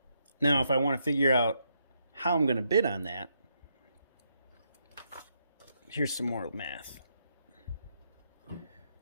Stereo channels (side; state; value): both; inverted; correlation -0.78